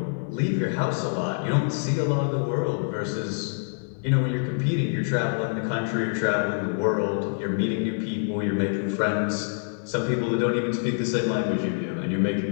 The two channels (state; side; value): silent; right; digital silence